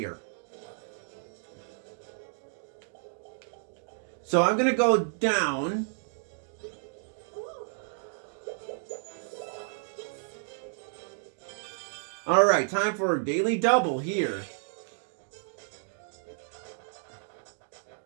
So I'm going to go down. Alright, time for a daily double here.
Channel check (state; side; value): silent; left; digital silence